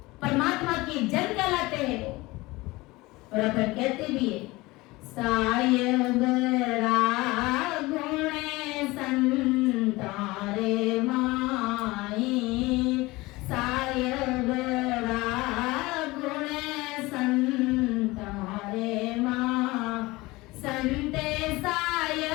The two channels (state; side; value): quieter; right; 21.2 dB